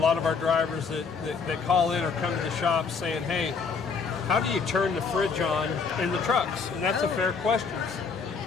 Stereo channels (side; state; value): right; quieter; 5.3 dB